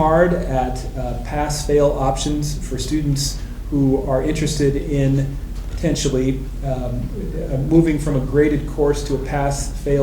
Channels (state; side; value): identical; both; correlation 1.00